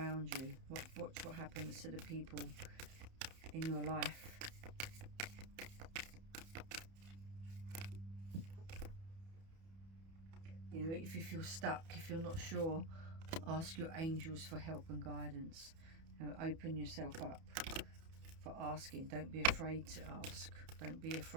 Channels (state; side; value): late; left; 31 ms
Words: you, watch what happens to the people in your life. You know, if you feel stuck, if you're not sure, ask your angels for help and guidance. You know, open yourself up for asking. Don't be afraid to ask. Don't be